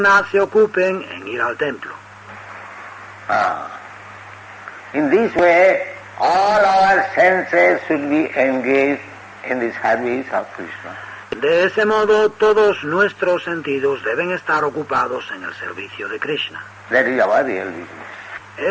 se ocupen en ir al templo. In this way, all our senses should be engaged in the service of Krishna. De ese modo, todos nuestros sentidos deben estar ocupados en el servicio de Krishna. That is our real business.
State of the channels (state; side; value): identical; both; correlation 1.00